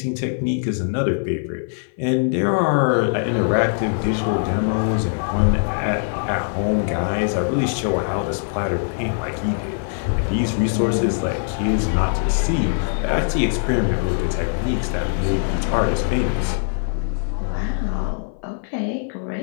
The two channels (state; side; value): silent; right; 59 dB below the other